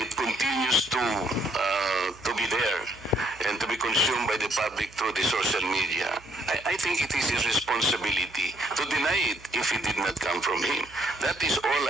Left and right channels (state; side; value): noise; right; hum, 23 dB below the sound